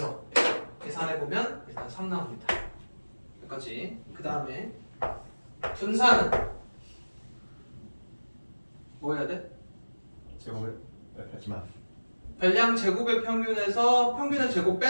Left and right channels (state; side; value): inverted; both; correlation -1.00